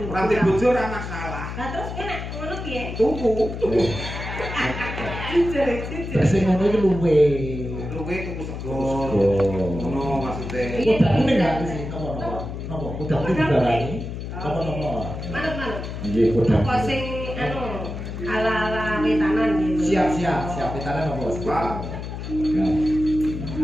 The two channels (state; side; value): noise; left; hum, 7 dB below the sound